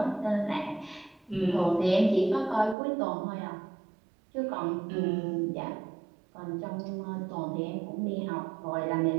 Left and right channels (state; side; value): drops out; left; at 2.8 s